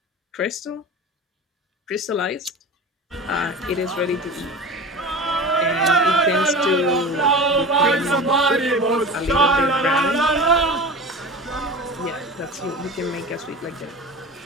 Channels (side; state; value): both; normal; correlation 0.33